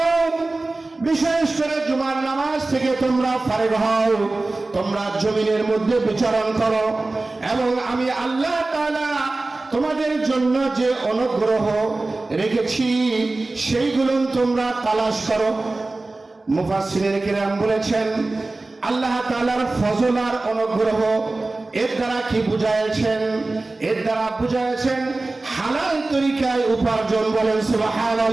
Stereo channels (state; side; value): quieter; left; 3.2 dB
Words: হও, বিশেষ করে জুমার নামাজ থেকে তোমরা ফারেগ হও, তোমরা জমিনের মধ্যে বিচরণ করো এবং আমি আল্লাহ তাআলা তোমাদের জন্য যে অনুগ্রহ রেখেছি সেইগুলো তোমরা তালাশ করো। মুফাসসিরিনে কিরাম বলেছেন, আল্লাহ তাআলার ফজল আর অনুগ্রহ এর দ্বারা কি বুঝাইছেন? এর দ্বারা বুঝাইছেন হালাল তরিকায় উপার্জন। বলেন